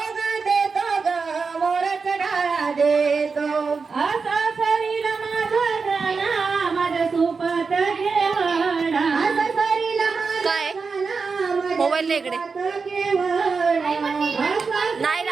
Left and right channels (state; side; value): quieter; left; 4.9 dB